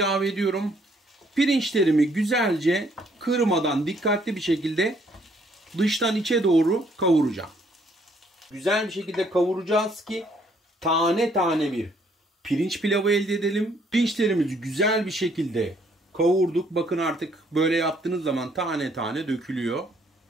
ediyorum. Pirinçlerimi güzelce kırmadan dikkatli bir şekilde dıştan içe doğru kavuracağım. Güzel bir şekilde kavuracağız ki tane tane bir pirinç pilavı elde edelim. Pirinçlerimizi güzel bir şekilde kavurduk. Bakın artık böyle yaptığınız zaman tane tane dökülüyor.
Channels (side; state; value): both; normal; correlation 0.66